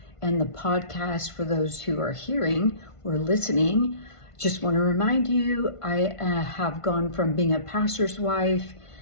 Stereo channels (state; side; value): late; right; 1.5 ms